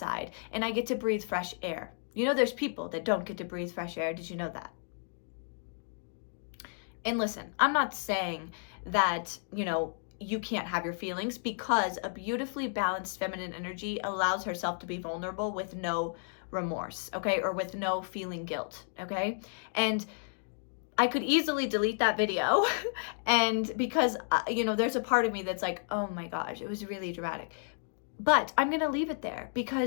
and I get to breathe fresh air. There's people that don't get to breathe fresh air. Did you know that? And listen, I'm not saying that, you can't have your feelings, because a beautifully balanced feminine energy allows herself to be vulnerable with no remorse, okay, or with no feeling guilt, okay? And I could easily delete that video and because there's a part of me that's like, oh my gosh, it was really dramatic. But I'm going to leave it there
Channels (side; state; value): right; silent; digital silence